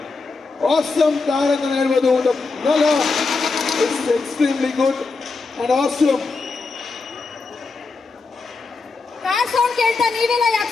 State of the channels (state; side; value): quieter; right; 4.1 dB